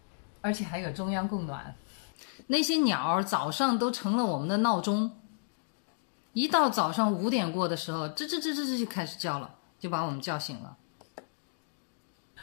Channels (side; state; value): right; silent; digital silence